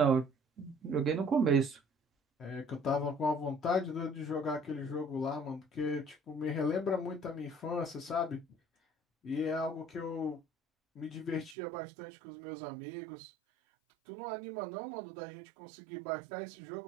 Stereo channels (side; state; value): left; drops out; at 11.6 s